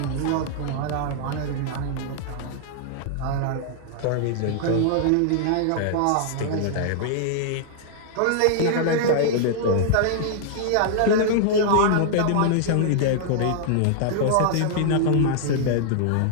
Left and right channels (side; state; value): both; different; correlation -0.01